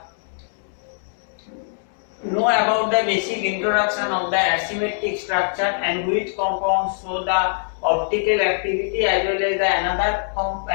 know about the basic introduction of the asymmetric structure and which compounds show the optical activity, as well as the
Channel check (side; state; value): right; silent; 63 dB below the other